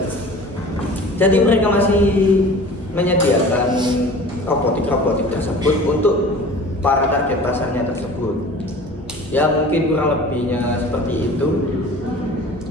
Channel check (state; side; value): normal; both; correlation 0.42